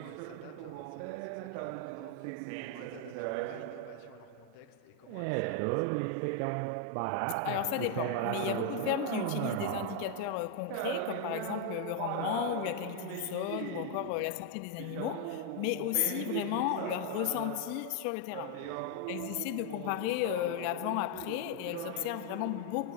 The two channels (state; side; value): different; both; correlation 0.01